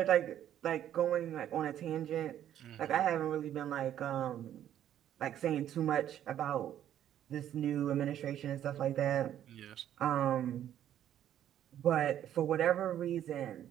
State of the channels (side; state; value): left; quieter; 11.0 dB